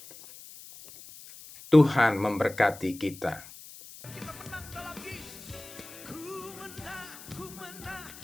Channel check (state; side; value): noise; left; hiss, 17 dB below the sound